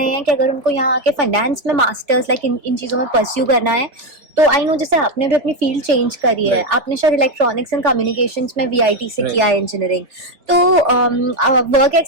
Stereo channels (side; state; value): left; late; 3.8 ms